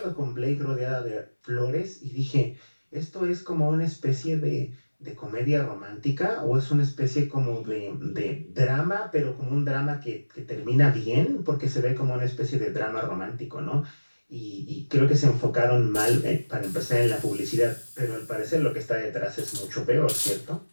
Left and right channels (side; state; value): both; inverted; correlation -1.00